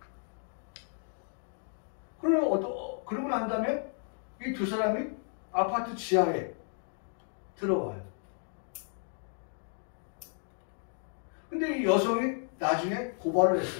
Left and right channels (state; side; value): silent; right; 56 dB below the other